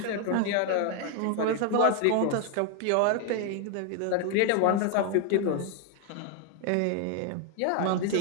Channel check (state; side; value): different; both; correlation 0.00